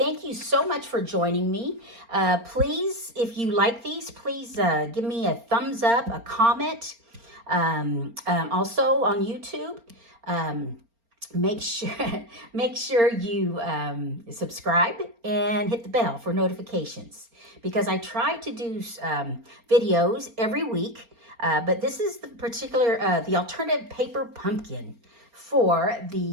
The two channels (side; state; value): left; late; 4.3 ms